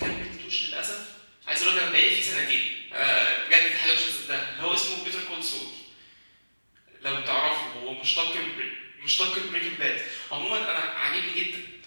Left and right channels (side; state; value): both; inverted; correlation -1.00